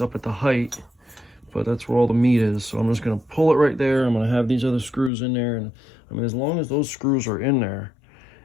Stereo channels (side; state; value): right; drops out; at 5.1 s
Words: up at the height, but that's where all the meat is, so I'm just gonna pull it right there. I'm gonna have these other screws in there, and I mean, as long as those screws are in there,